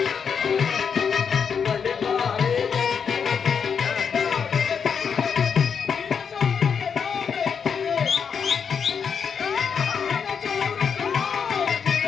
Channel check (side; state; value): right; quieter; 6.6 dB